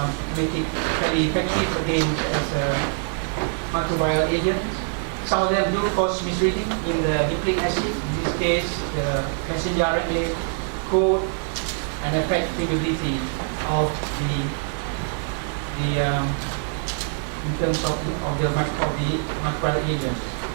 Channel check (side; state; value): left; silent; 59 dB below the other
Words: make it very effective against as a microbial agent. Some of them do cause misreading in the nucleic acid. In this case, the messenger RNA code, and affect permeability of in terms of the microbial agent.